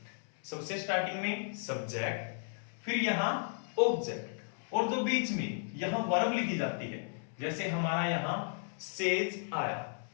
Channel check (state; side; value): silent; right; 55 dB below the other